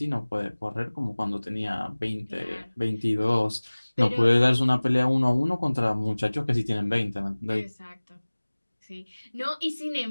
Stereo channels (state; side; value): inverted; both; correlation -1.00